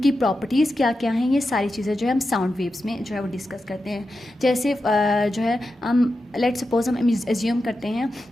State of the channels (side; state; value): both; normal; correlation 0.90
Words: प्रॉपर्टीज़ क्या क्या हैं। ये सारी चीज़ें जो है हम साउंड वेव्स में जो है वो डिस्कस करते हैं। जैसे जो है हम लेट्स सपोज हम एज्यूम करते